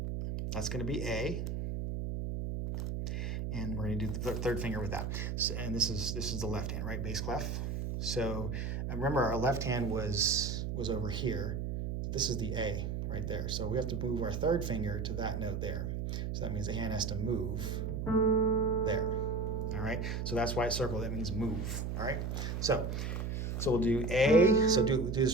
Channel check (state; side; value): noise; right; hum, 2 dB below the sound